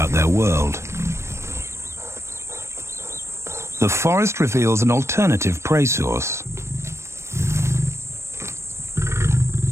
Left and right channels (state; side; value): late; left; 0.13 ms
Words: their world. The forest reveals an alternative prey source.